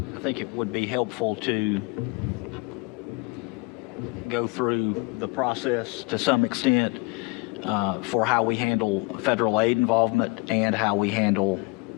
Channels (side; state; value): right; quieter; 27.2 dB